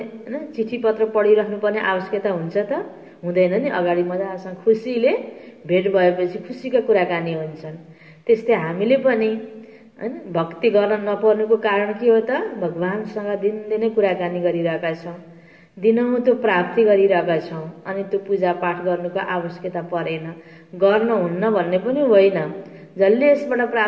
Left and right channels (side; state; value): both; identical; correlation 1.00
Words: चिठी पत्र पढिराख्नुपर्ने आवश्यकता हुन्छ त? हुँदैन नि। अगाडि मजासँग खुसीले भेट भएपछि खुसीका कुराकानी हुन्छन्। त्यस्तै हामीले पनि हैन भक्ति गर्न नपर्नुको कारण के हो त? भगवानसँग दिनदिनै कुराकानी गरिरहेका छौं। दिनहुँ त्यो प्राप्ति गरिरहेका छौँ अनि त्यो पूजापाठ गर्नुको आवश्यकता परेन, गर्न हुन्न भन्ने पनि होइन। जसले यसबाट